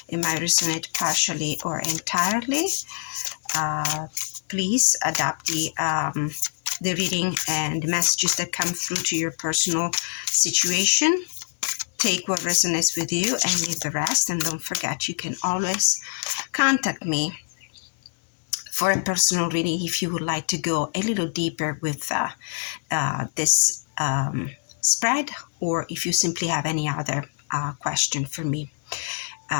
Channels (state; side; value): silent; right; digital silence